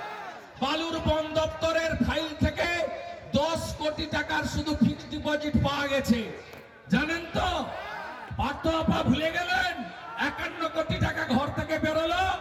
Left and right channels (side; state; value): both; identical; correlation 1.00